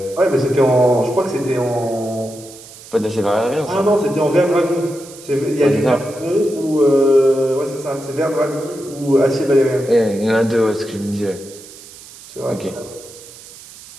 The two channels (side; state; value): right; noise; hiss, 19 dB below the sound